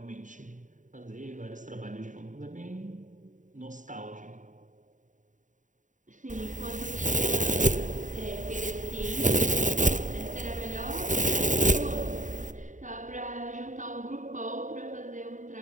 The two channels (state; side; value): late; left; 0.36 ms